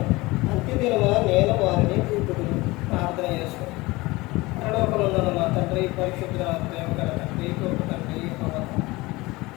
అంత్యదినమున నేను వారిని చూపుదును. ప్రార్థన చేసుకుని పరలోకమందున్న మా తండ్రి, పరిశుద్ధ ప్రేమ గల తండ్రి, గొప్ప తండ్రి,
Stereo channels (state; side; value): quieter; right; 21.5 dB